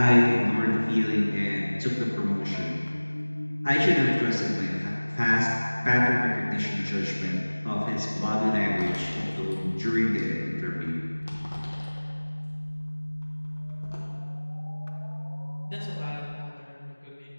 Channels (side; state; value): both; inverted; correlation -1.00